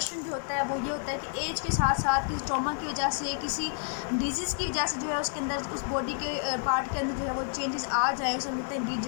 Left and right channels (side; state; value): right; silent; 58 dB below the other